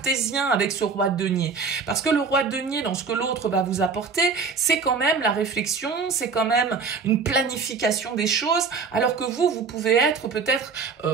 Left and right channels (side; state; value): left; quieter; 5.0 dB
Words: avec ce roi de denier. Parce que le roi de denier, dans ce que l'autre va vous apporter, c'est quand même la réflexion, c'est quand même une planification des choses, alors que vous pouvez être peut-être